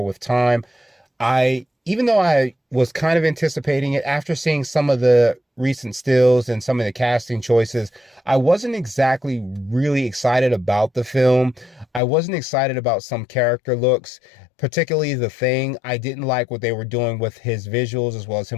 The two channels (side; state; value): right; drops out; at 12.0 s